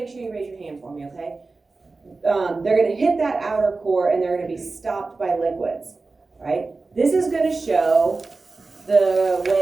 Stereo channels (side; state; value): left; quieter; 3.8 dB